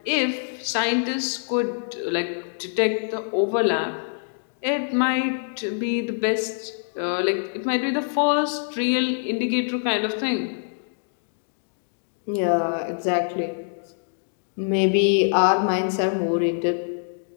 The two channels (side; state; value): right; silent; digital silence